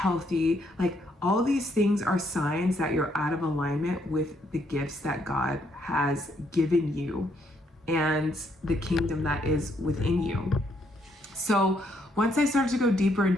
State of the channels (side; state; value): both; normal; correlation 0.72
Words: Like all these things are signs that you're out of alignment with the gifts that God has given you and the kingdom that is within you. So once I started to go deeper and